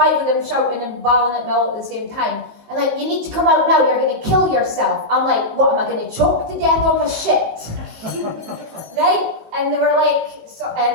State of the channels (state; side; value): late; left; 19 ms